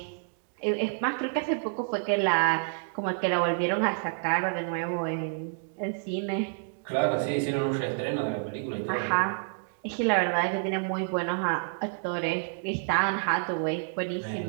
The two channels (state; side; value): silent; left; digital silence